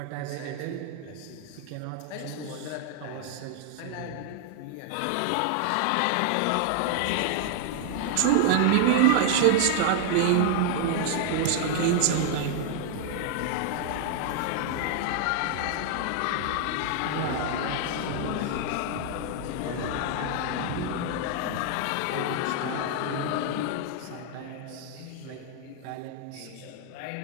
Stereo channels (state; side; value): different; both; correlation 0.00